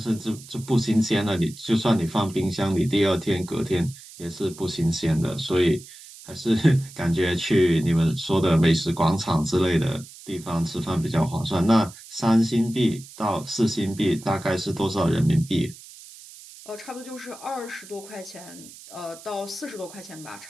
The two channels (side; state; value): right; noise; hiss, 18 dB below the sound